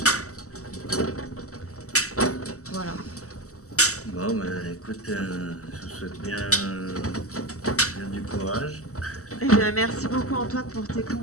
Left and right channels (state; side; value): late; right; 0.65 ms